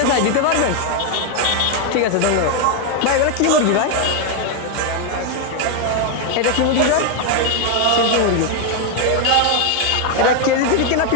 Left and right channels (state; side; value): different; both; correlation 0.01